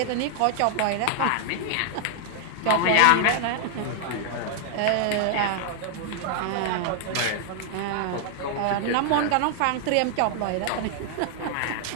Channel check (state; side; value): different; both; correlation 0.00